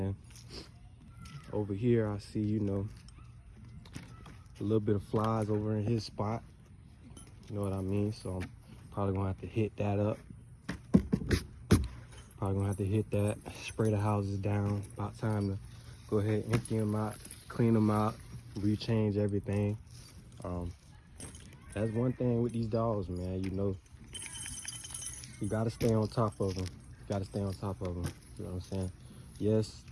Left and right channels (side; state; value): both; identical; correlation 1.00